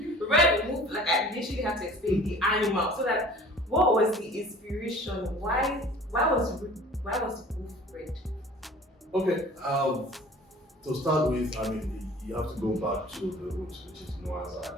RedWolf, like I literally had to explain the animal. So that, what was the inspiration? Why was wolf red? Okay, to start with, I mean, you have to go back to the roots, which is Noah's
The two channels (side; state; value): both; normal; correlation 0.46